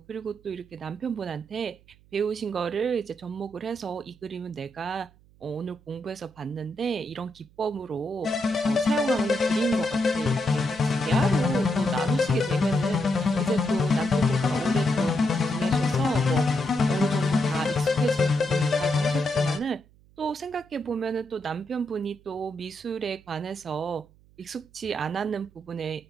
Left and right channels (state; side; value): noise; right; hum, 28 dB below the sound